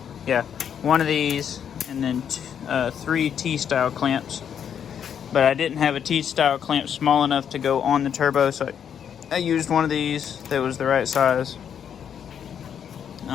yeah, one of these, and then 3 T-style clamps. But I didn't have a T-style clamp small enough to go on the turbo, so I used one of these that was the right size.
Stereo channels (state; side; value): quieter; right; 8.3 dB